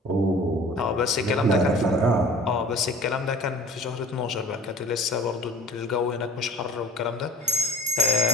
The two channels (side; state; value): both; normal; correlation 0.47